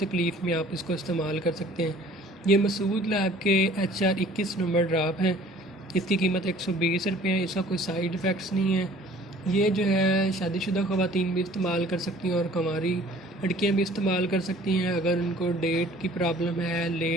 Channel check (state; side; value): normal; both; correlation 0.52